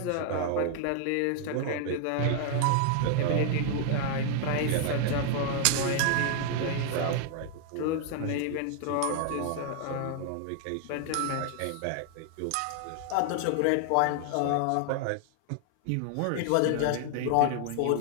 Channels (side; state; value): both; different; correlation 0.00